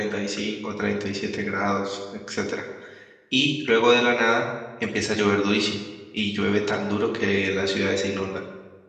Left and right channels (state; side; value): identical; both; correlation 1.00